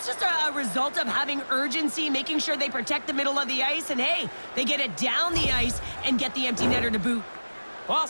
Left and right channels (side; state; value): both; inverted; correlation -1.00